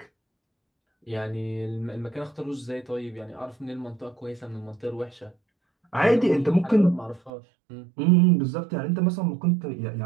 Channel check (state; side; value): drops out; left; at 7.3 s